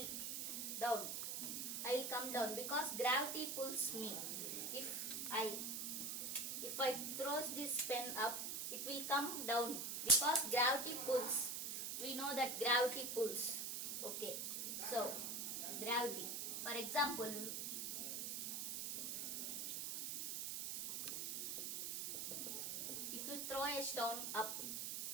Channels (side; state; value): right; noise; hiss, 2 dB below the sound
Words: will come down because gravity pulls me. If I throw this pen up, it will come down because gravity pulls. We know that gravity pulls. Okay, so gravity. For example, if you throw a stone up,